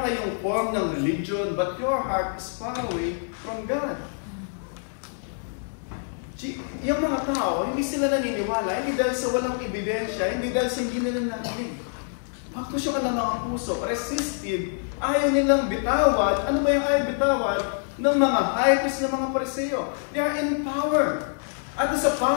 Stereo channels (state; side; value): silent; right; digital silence